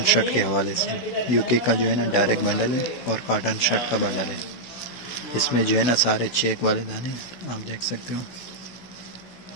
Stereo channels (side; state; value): right; late; 16 ms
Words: शर्ट के हवाले से। यूके का जो है ना डायरेक्ट बंडल है और कॉटन शर्ट का बंडल है। इसमें जो है ना सारे चेक वाले दाने आप देख सकते हो,